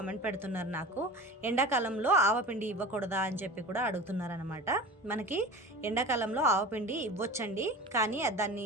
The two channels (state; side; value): normal; both; correlation 0.35